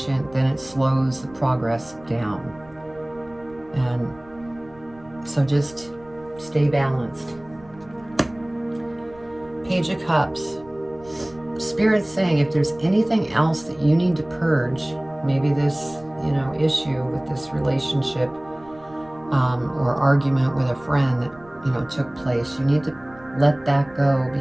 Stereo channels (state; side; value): noise; right; rumble, 25 dB below the sound